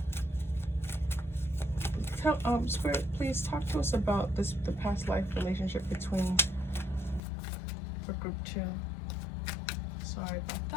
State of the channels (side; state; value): right; drops out; at 7.2 s